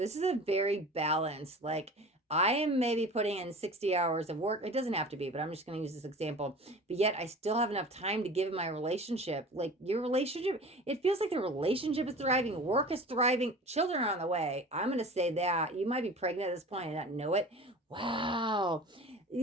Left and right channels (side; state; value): both; normal; correlation 0.39